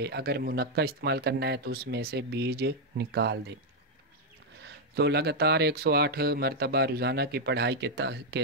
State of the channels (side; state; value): both; normal; correlation 0.00